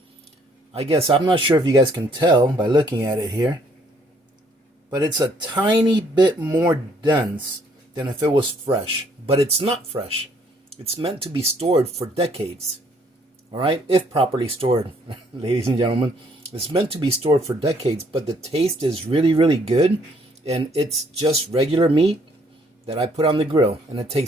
I guess I'm not sure if you guys can tell by looking at it here, but it's a tiny bit more dense than if it was fresh. But it's not fresh. It's meant to be stored for decades. All right, if properly stored, ladies and gentlemen. It's meant to be stored for decades, but the taste is really, really good. And it's just regular meat that I put on the grill, and it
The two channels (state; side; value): normal; both; correlation 0.65